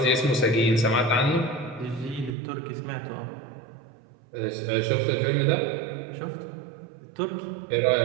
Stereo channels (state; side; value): drops out; left; at 2.4 s